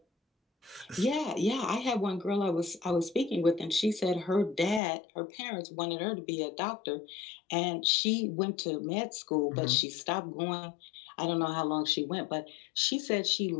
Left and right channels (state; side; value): drops out; right; at 4.8 s